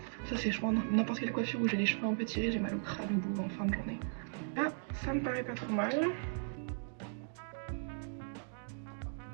ça c'est je pense n'importe quelle coiffure où j'ai les cheveux un peu tirés, j'ai mal au crâne au bout en fin de journée. Là ça me paraît pas trop mal.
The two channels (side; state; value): left; silent; digital silence